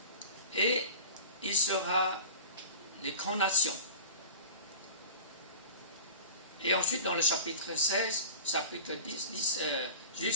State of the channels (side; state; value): both; inverted; correlation -0.37